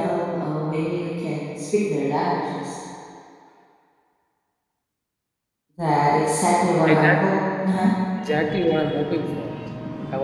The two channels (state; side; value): identical; both; correlation 1.00